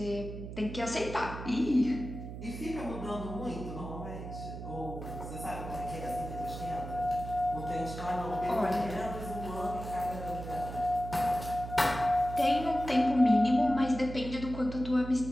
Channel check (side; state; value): right; noise; hum, 9 dB below the sound